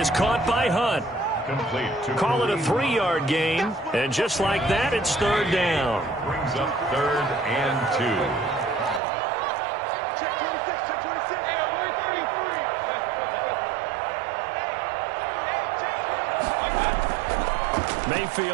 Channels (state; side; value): drops out; left; at 9.0 s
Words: caught by Hunt. Call it a 3-yard gain. And just like that, it's 3rd down. Brings up 3rd and 2. Check 26, check 26. Hey, we're 33.